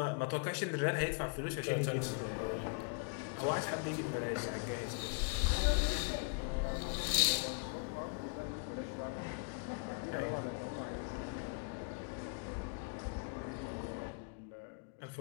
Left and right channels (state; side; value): quieter; right; 37.9 dB